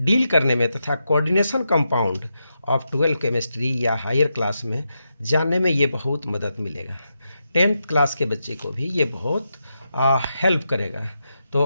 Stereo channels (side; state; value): both; inverted; correlation -0.86